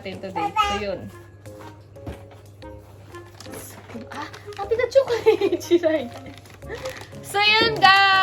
today. So, yun. Happy na chocolate! Chiray. So, yun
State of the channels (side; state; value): both; identical; correlation 1.00